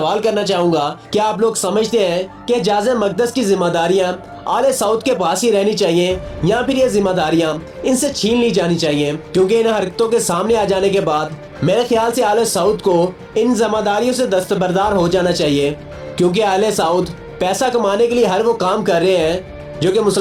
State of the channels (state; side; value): identical; both; correlation 1.00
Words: करना चाहूंगा कि आप लोग समझते हैं कि जाज़े मक़दस की जिम्मेदारियां आले सऊद के पास ही रहनी चाहिए या फिर ये जिम्मेदारियां इनसे छीन ली जानी चाहिए, क्योंकि इन हरकतों के सामने आ जाने के बाद मेरे ख्याल से आले सऊद को इन जिम्मेदारियों से दस्तबरदार हो जाना चाहिए, क्योंकि आले सऊद पैसा कमाने के लिए हर वो काम कर रहे हैं जो कि